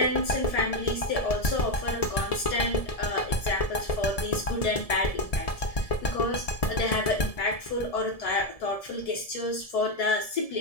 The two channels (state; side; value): late; right; 1.7 ms